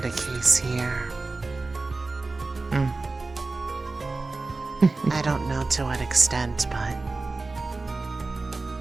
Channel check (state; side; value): quieter; left; 3.6 dB